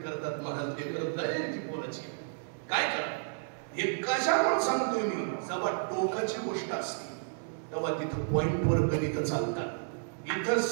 महाराज, हे करत नाही ती बोलायची काय करा. हे कशामुळे सांगतोय मी, जेव्हा टोकाची गोष्ट असते तेव्हा तिथं पॉइंटवर गणित चालतात. इथं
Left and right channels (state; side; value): silent; left; 57 dB below the other